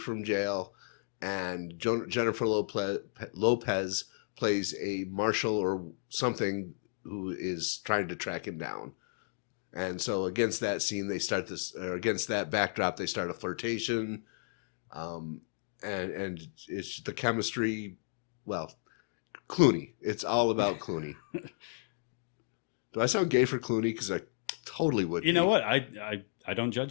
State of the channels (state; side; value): silent; right; digital silence